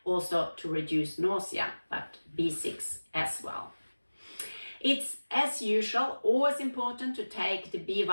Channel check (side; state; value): both; inverted; correlation -1.00